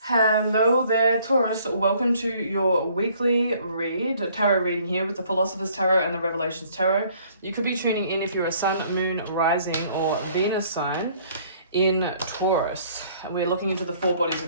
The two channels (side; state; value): both; inverted; correlation -0.60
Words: Hello there, Taurus. Welcome to your weekly read, tarot reading here with the Philosopher's Tarot and the Revelations Tarot. You could be tuning in if you're a Sun, Moon, Rising, or Venus sign in Taurus. We're looking into the four bodies